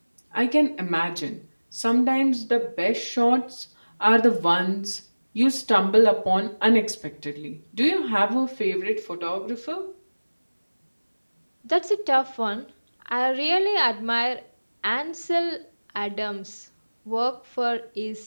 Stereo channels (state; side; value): inverted; both; correlation -1.00